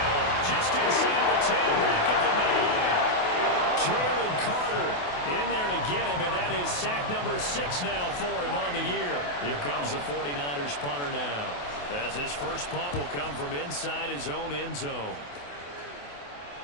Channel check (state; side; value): late; right; 28 ms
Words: Just inside the 10, back at the 9. Jalen Carter in there to get him, and that is sack number 6 now for him on the year. Here comes the 49ers punter now, as his first punt will come from inside his own end zone.